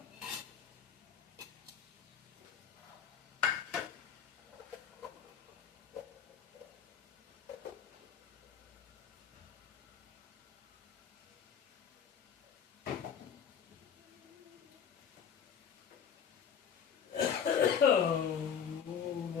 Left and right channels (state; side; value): quieter; right; 7.7 dB